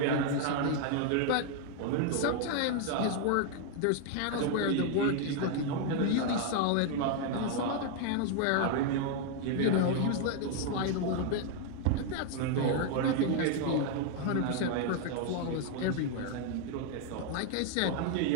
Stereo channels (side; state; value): both; different; correlation 0.00